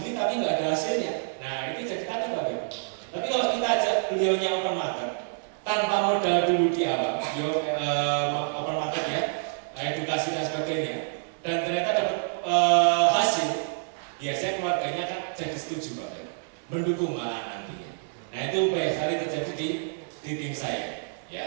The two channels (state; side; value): silent; left; digital silence